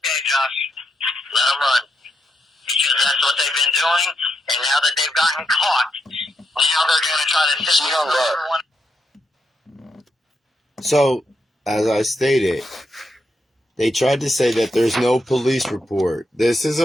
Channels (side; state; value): both; normal; correlation 0.82